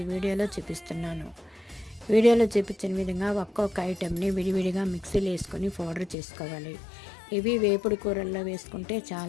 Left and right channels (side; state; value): right; drops out; at 6.2 s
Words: వీడియోలో చూపిస్తున్నాను. వీడియోలో చూపించిన విధంగా ఒక్కొక్క ఐటెంని విడివిడిగా మిక్సీలో వేసుకొని పౌడర్ చేసుకోవాలి. ఇవి వేపుడు కూరల్లో వేసుకుంటే